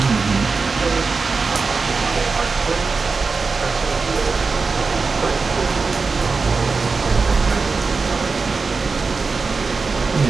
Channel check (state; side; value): quieter; left; 4.5 dB